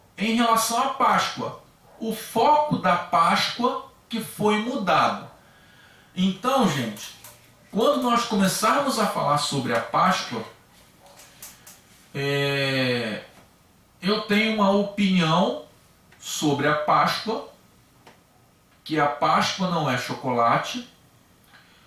em relação à Páscoa. O foco da Páscoa que foi mudado. Então, gente, quando nós começarmos a falar sobre a Páscoa, eu tenho uma opinião sobre a Páscoa, que a Páscoa não é chocolate,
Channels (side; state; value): both; identical; correlation 1.00